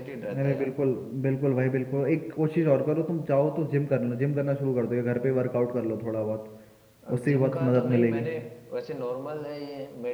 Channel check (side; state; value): both; identical; correlation 1.00